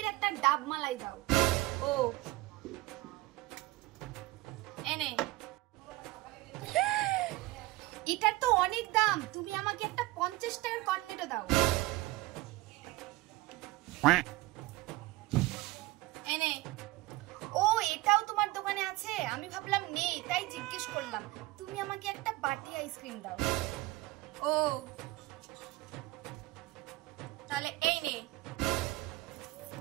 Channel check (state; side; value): quieter; left; 19.4 dB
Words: একটা ডাব মালাই দাও। ও এনে। এটার তো অনেক দাম, তুমি আমাকে একটা 50 টাকার কর্নেটো দাও। এনে। ও এটাও তোমার দোকানে আছে? আমি ভাবলাম নেই, তাই জিজ্ঞেস করলাম। তুমি আমাকে একটা বাটি আইসক্রিম দাও। ও তাহলে এই নে।